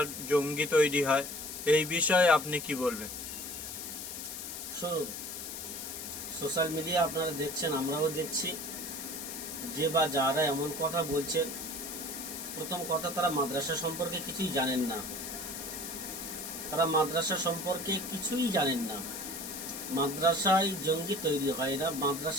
জঙ্গি তৈরি হয়। এই বিষয়ে আপনি কি বলবেন? শুনুন, সোশ্যাল মিডিয়া আপনারা দেখছেন, আমরাও দেখছি, যে বা যারা এমন কথা বলছেন, প্রথম কথা, তারা মাদ্রাসা সম্পর্কে কিছুই জানেন না। তারা মাদ্রাসা সম্পর্কে কিছুই জানেন না। মাদ্রাসায় জঙ্গি তৈরি হয় না,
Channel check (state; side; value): noise; left; hiss, 7 dB below the sound